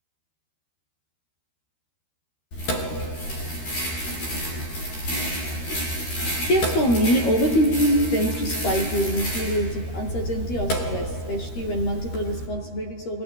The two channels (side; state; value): right; late; 13 ms